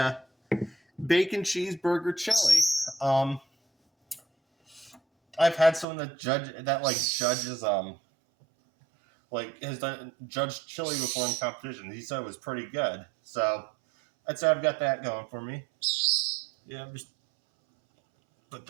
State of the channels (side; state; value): left; drops out; at 5.9 s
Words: bacon cheeseburger chili. I've had someone that judges has done judged chili before in competition. He said it was pretty good. So I'd say I've got that going for me. Yeah, just put